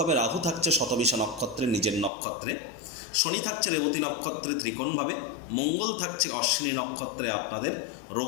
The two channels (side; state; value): right; drops out; at 2.1 s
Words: রাহু থাকছে শতবিশা নক্ষত্রে নিজের নক্ষত্রে, শনি থাকছে রেবতী নক্ষত্রে ত্রিকোণভাবে, মঙ্গল থাকছে অশ্বিনী নক্ষত্রে আপনাদের